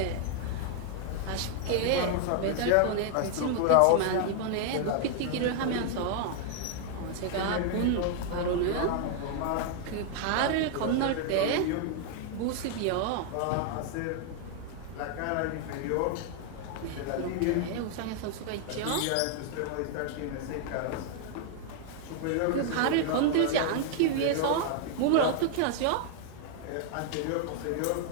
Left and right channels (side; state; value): both; different; correlation 0.00